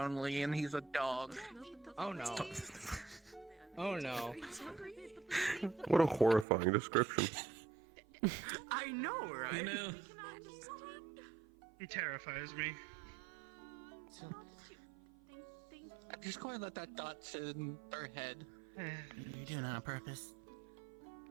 and he's a dog. Oh no. Oh no. What a horrifying description. I know, right? You know, He terrifies me. I'm just going to let that dot sit in their head. You're doing it on purpose.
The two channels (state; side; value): drops out; left; at 6.5 s